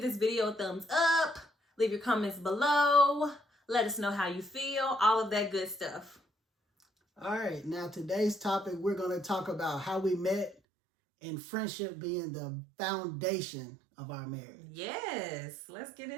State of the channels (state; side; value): drops out; left; at 10.6 s